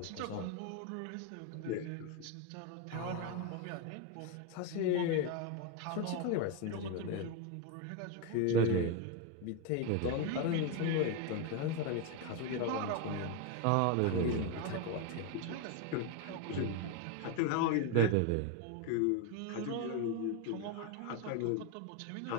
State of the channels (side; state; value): both; different; correlation 0.02